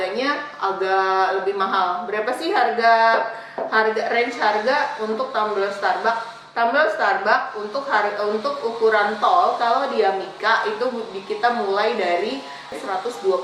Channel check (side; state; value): both; identical; correlation 1.00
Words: agak lebih mahal. Berapa sih range harga untuk tumbler Starbucks? Tumbler Starbucks untuk ukuran tall kalau dia mika itu kita mulai dari